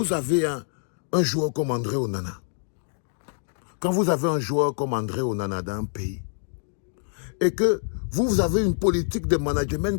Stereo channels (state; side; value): silent; right; digital silence